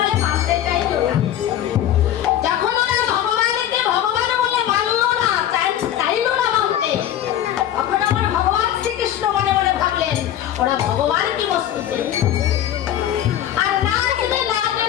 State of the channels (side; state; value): right; quieter; 11.5 dB